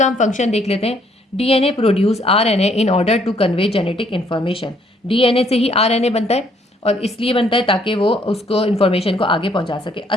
हम फंक्शन देख लेते हैं। DNA produce RNA in order to convey genetic information. DNA से ही RNA बनता है और इसलिए बनता है ताकि वो उसको इन्फॉर्मेशन को आगे पहुंचा सके।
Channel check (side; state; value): both; normal; correlation 0.66